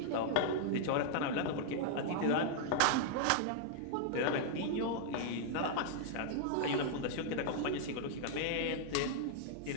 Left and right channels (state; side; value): different; both; correlation -0.01